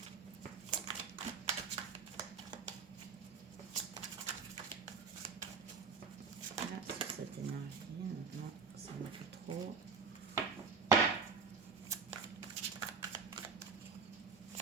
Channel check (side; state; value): left; quieter; 5.3 dB